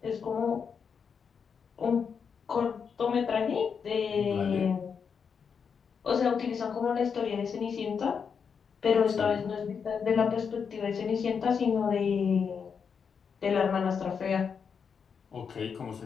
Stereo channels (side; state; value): right; quieter; 6.4 dB